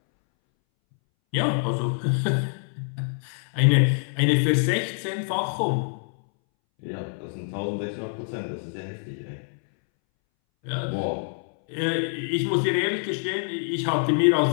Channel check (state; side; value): silent; right; 61 dB below the other